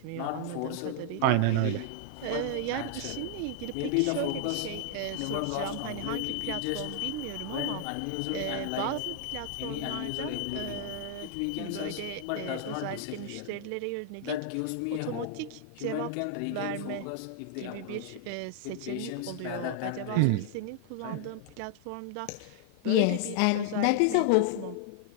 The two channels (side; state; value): both; different; correlation -0.01